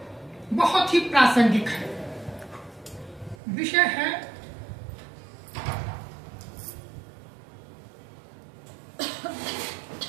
बहुत ही प्रासंगिक है। विषय है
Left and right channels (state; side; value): drops out; left; at 3.4 s